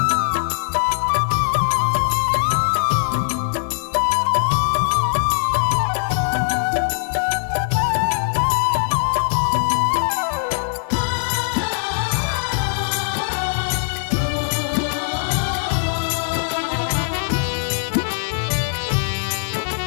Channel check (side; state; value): right; silent; digital silence